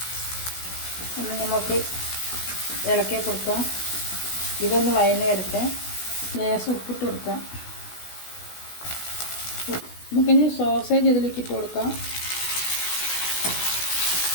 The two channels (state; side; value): late; right; 16 ms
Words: ഒന്ന് നമുക്ക് ഇളക്കി കൊടുക്കാം. ഇതൊന്ന് വഴന്ന് വരട്ടെ. ലേശം ഉപ്പിട്ട് കൊടുക്കാം. നമുക്കിനി സോസേജ് ഇതിലേക്ക് ഇട്ട് കൊടുക്കാം.